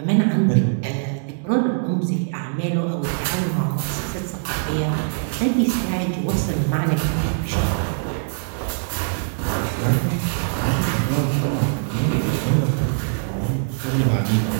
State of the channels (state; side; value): silent; left; digital silence